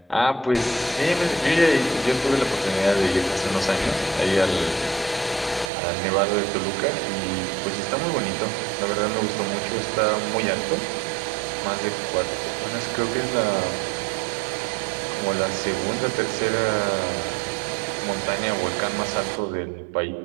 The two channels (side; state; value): left; drops out; at 5.7 s